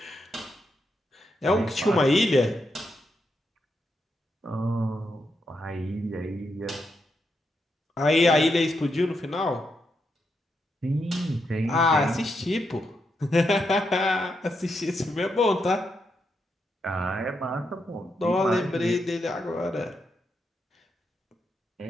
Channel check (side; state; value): both; normal; correlation 0.82